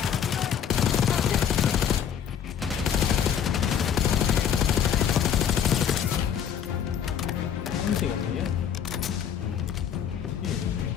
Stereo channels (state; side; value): quieter; right; 8.5 dB